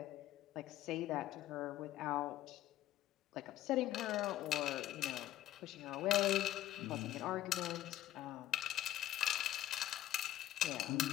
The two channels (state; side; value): quieter; right; 13.5 dB